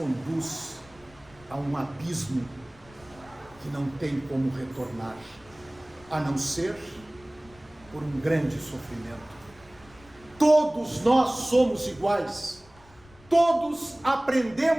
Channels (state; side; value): noise; left; rumble, 25 dB below the sound